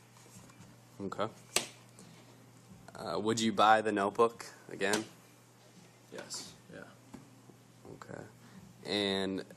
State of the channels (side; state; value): both; identical; correlation 1.00